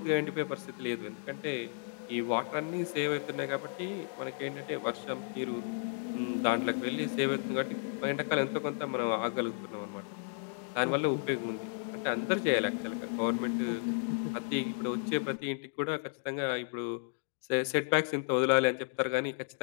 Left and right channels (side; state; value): right; silent; 55 dB below the other